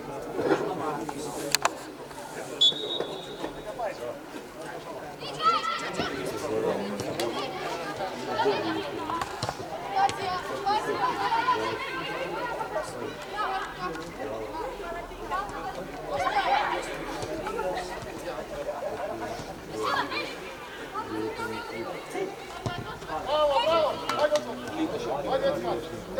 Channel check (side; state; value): both; identical; correlation 1.00